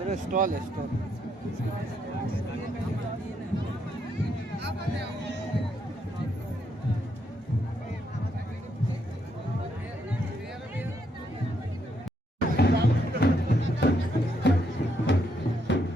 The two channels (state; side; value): normal; both; correlation 0.76